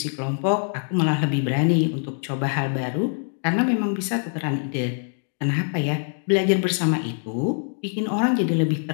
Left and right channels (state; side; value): silent; right; 62 dB below the other